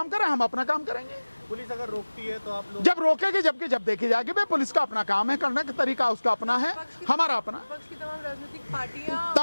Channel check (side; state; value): both; inverted; correlation -1.00